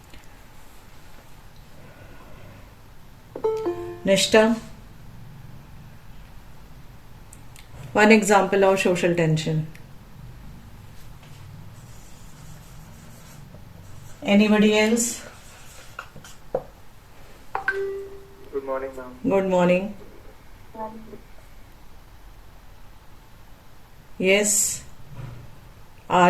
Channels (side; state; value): both; identical; correlation 1.00